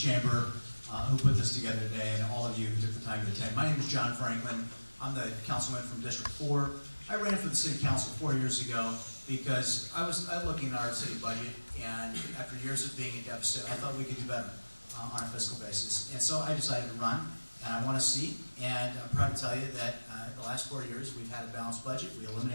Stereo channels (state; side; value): inverted; both; correlation -1.00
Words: who put this together today, and all of you who took the time to attend. My name is John Franklin. I'm the councilman from District 4. I ran for the city council 4 years ago because I was looking at our city budget, and after years of being in deficit, I thought we could do better on a fiscal basis. And so I decided to run, and I want to see, and I'm proud to tell you that the last 4 years we've had a balanced budget. We